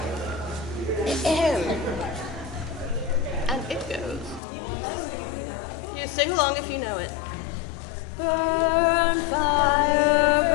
am. And it goes. You want us to sing if we know it? You sing along if you know it. Burn fire,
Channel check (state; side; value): drops out; right; at 4.4 s